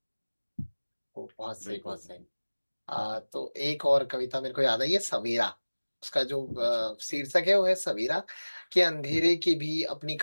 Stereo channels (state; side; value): inverted; both; correlation -1.00